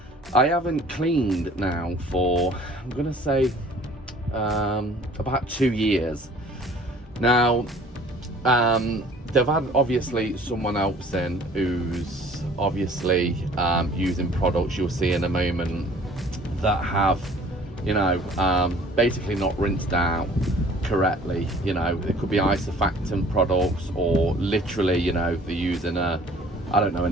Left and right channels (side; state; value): both; normal; correlation 0.52